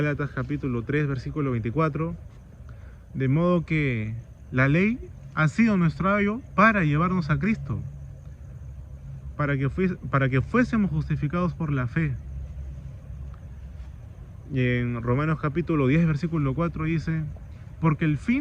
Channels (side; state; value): both; identical; correlation 1.00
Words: capítulo 3 versículo 24, de modo que la ley ha sido nuestro ayo para llevarnos a Cristo, para que fuésemos justificados por la fe. Y en Romanos capítulo 10 versículo 4 dice, porque el